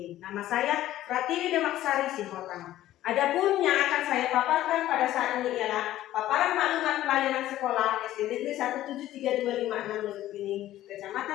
Nama saya Pratiwi Demaksari Simotang. Adapun yang akan saya paparkan pada saat ini ialah paparan maklumat pelayanan sekolah SD Negeri 17326 Lubukpining,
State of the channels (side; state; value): right; quieter; 13.9 dB